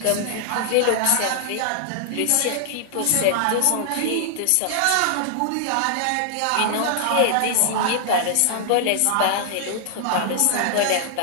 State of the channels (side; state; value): both; different; correlation -0.01